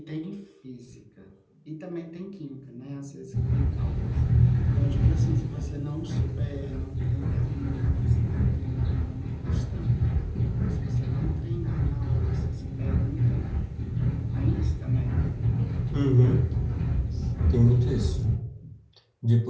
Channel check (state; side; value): identical; both; correlation 1.00